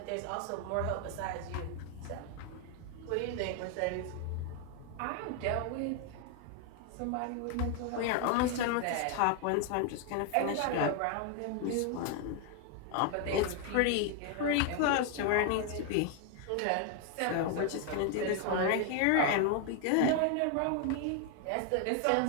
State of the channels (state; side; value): different; both; correlation 0.00